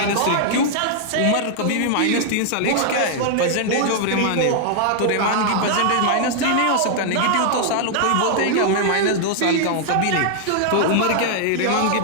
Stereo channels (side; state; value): both; different; correlation 0.00